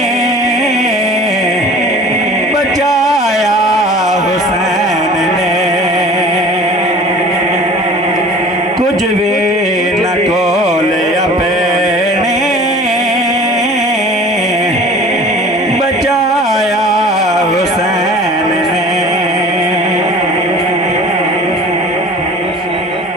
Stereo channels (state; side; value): normal; both; correlation 0.44